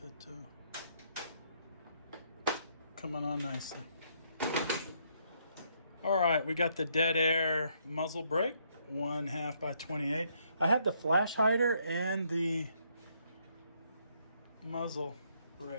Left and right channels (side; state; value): both; inverted; correlation -0.71